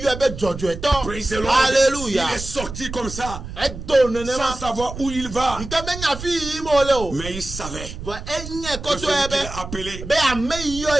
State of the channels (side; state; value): right; noise; rumble, 10 dB below the sound